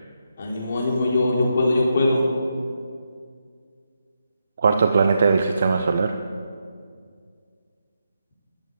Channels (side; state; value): both; inverted; correlation -0.83